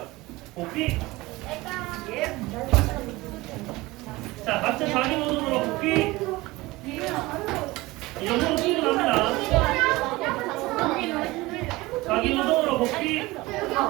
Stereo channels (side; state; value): left; quieter; 20.6 dB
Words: 복귀. 자, 각자 자기 모둠으로 복귀. 이 정도로 충분합니다. 자기 모둠으로 복귀.